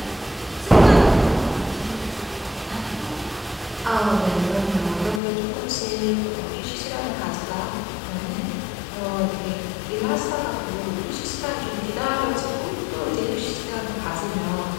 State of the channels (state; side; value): drops out; right; at 5.2 s